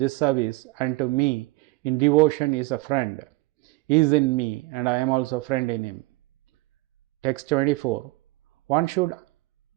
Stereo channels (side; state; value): left; quieter; 21.8 dB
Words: unto me in devotion is a friend. He is in me, and I am also a friend in him. Text 24. One should